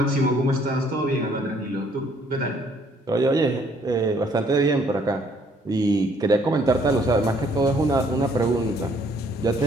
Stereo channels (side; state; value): both; normal; correlation 0.64